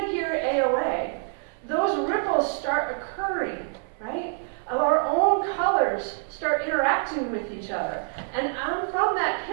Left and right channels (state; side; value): silent; left; 61 dB below the other